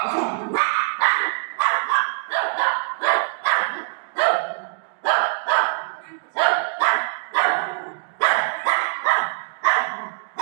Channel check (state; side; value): silent; left; digital silence